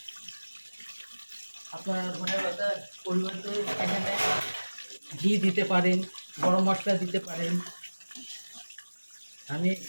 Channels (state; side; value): inverted; both; correlation -1.00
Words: আপনারা ধনেপাতার পরিবর্তে এখানে ঘি দিতে পারেন, গরম মশলা দিতে পারেন। আমি